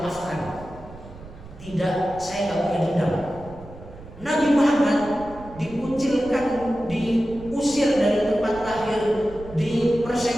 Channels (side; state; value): right; noise; rumble, 17 dB below the sound